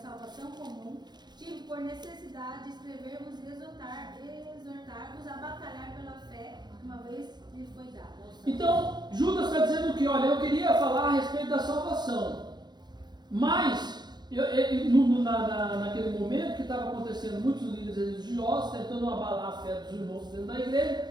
comum, tive por necessidade de escrever-vos e exortar-vos a batalhar pela fé que uma vez lhe foi dada. Então, Judas está dizendo que, olha, eu queria falar a respeito da salvação, mas naquele momento que estava acontecendo, muitos líderes religiosos tentando abalar a fé dos irmãos dentro da igreja,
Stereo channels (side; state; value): left; late; 0.21 ms